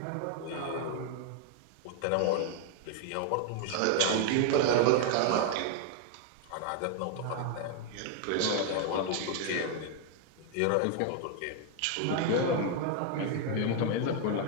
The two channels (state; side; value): different; both; correlation 0.00